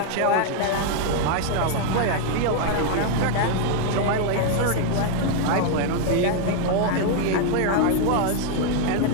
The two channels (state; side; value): different; both; correlation 0.00